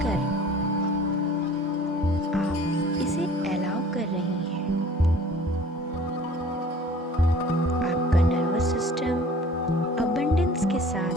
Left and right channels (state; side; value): normal; both; correlation 0.48